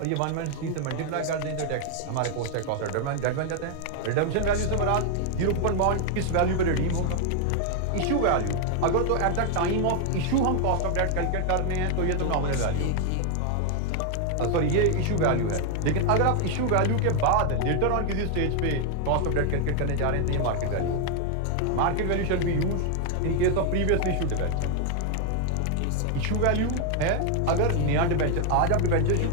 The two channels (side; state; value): both; different; correlation 0.00